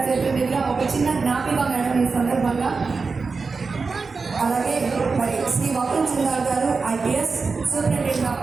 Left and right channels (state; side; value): quieter; left; 4.5 dB